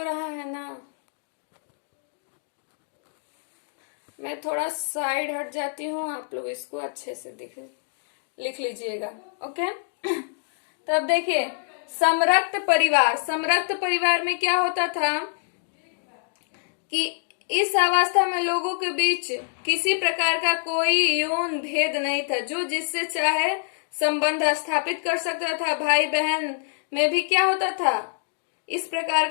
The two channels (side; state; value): right; silent; digital silence